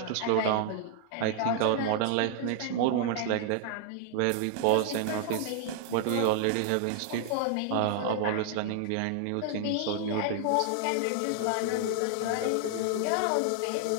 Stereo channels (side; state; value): both; different; correlation 0.00